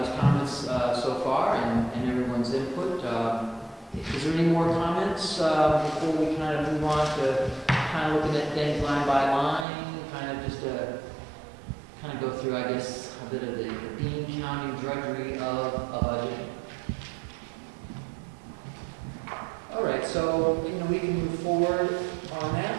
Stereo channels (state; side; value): drops out; left; at 9.7 s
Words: comments so far and everyone's input. Is there any more comments before we kind of move on to kind of looking at things line by line, kind of just kind of go through, I guess, a bit of the Bean County drudgery of a budget. All right, so, you know, we can move forward on